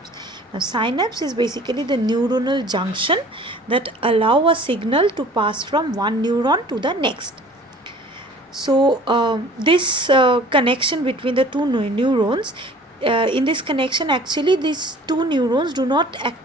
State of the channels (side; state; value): both; normal; correlation 0.48